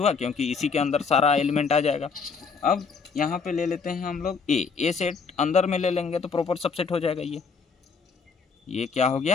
क्योंकि इसी के अंदर सारा एलिमेंट आ जाएगा। अब यहाँ पे ले लेते हैं हम लोग ए सेट, अंदर में ले लेंगे तो प्रॉपर सबसेट हो जाएगा। ये क्या हो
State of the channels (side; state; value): right; quieter; 5.3 dB